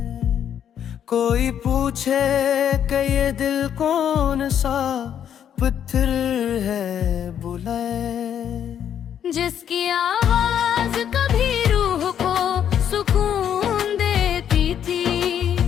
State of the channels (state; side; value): quieter; right; 9.3 dB